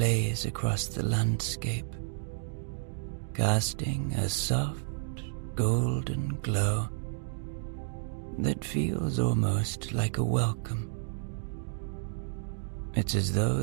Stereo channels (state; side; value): silent; left; digital silence